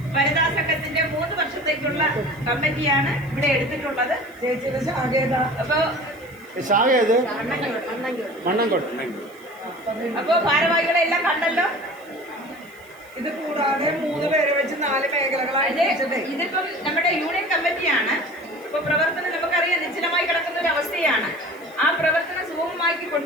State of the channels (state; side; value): noise; right; hiss, 27 dB below the sound